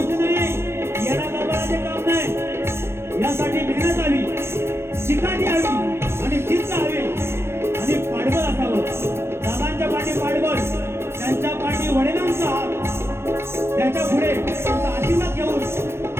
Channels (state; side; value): late; left; 0.12 ms